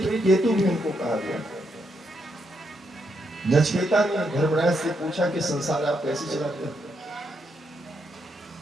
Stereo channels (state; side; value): normal; both; correlation 0.79